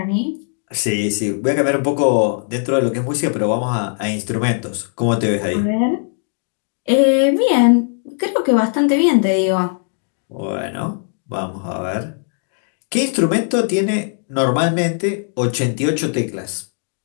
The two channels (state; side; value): silent; right; 57 dB below the other